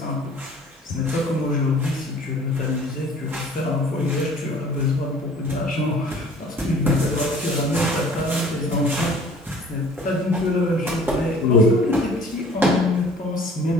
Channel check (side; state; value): both; normal; correlation 0.50